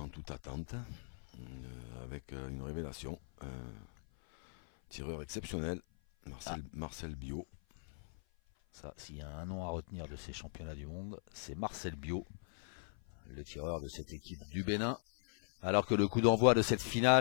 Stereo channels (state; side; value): silent; right; 52 dB below the other